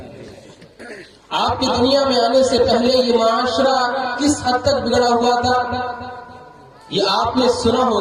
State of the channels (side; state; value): both; identical; correlation 1.00